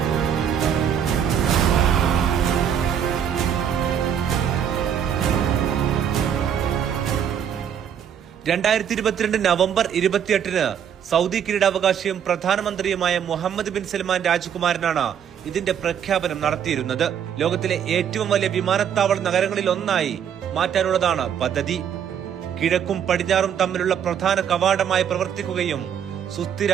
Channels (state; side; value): quieter; left; 8.6 dB